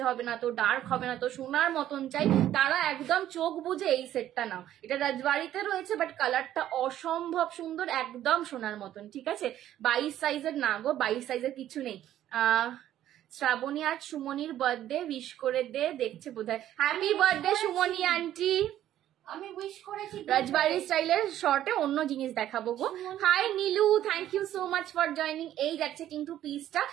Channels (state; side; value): quieter; left; 12.2 dB